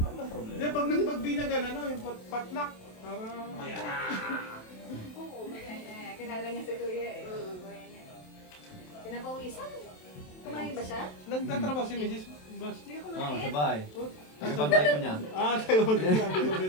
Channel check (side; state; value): right; late; 27 ms